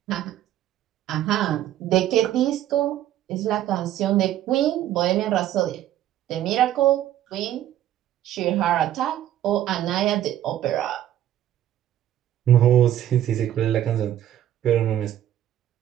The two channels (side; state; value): left; quieter; 12.2 dB